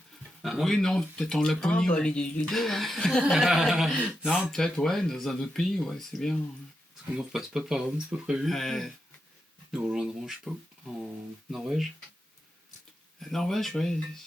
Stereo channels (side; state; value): both; normal; correlation 0.87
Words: Oui, non, peut-être en Laponie. Les deux, hein. Non, peut-être, dans un autre pays, c'est bien. On ne repasse pas par Rome, c'est pas prévu. Nous rejoindrons, je sais pas, en Norvège. Norvège,